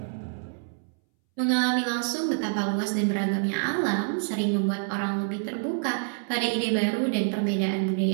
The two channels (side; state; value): left; silent; 60 dB below the other